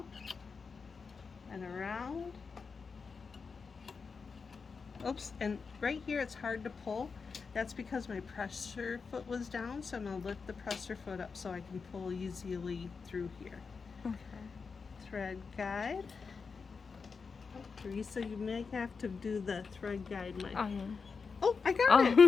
and around. Oops, and right here it's hard to pull. That's because my presser foot was down, so I'm going to lift the presser foot up so I can pull easily through here. Okay. Thread guide. Teresa, you may have to do the thread guide. Oh, I got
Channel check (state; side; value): quieter; right; 5.1 dB